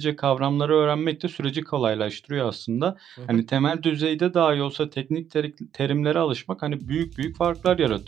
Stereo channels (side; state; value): left; quieter; 9.6 dB